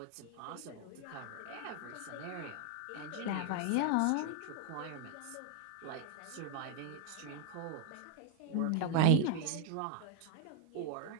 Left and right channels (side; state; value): both; different; correlation 0.01